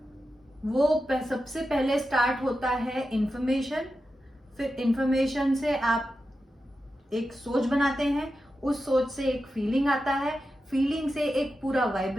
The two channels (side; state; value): both; normal; correlation 0.90